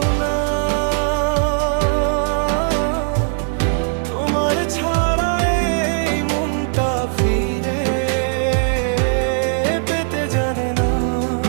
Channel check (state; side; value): silent; left; digital silence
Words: না। তোমার ছাড়া এই মনটা ফিরে পেতে জানে না।